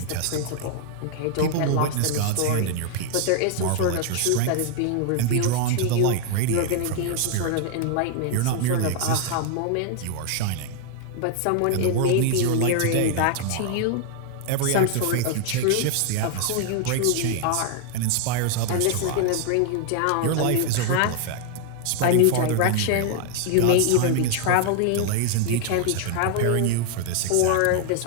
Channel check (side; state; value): both; different; correlation 0.00